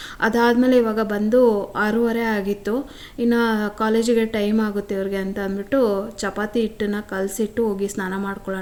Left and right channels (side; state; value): both; identical; correlation 1.00